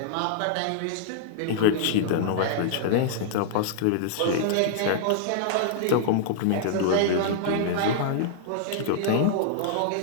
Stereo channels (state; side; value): different; both; correlation -0.02